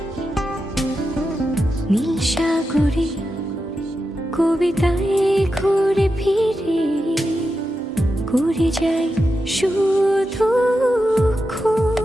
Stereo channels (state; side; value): normal; both; correlation 0.89